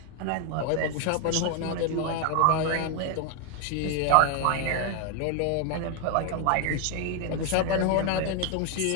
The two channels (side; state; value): both; different; correlation 0.01